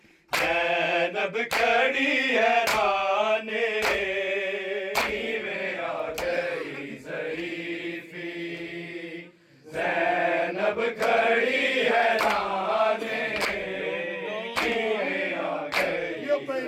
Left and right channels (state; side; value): identical; both; correlation 1.00